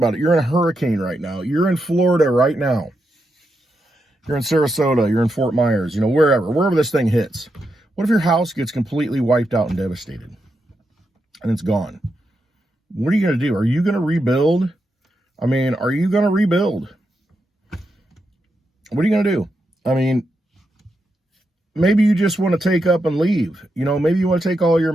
it. You're in a hurricane right now. You're in Florida right now. You're in Sarasota. You're in Fort Myers, wherever this thing hits. What if your house gets completely wiped out and devastated and it's gone? What are you going to do? Are you going to rebuild? Are you going to rebuild? What are you going to do? maybe you just want to take up and leave. Maybe you want to take all your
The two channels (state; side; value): normal; both; correlation 0.85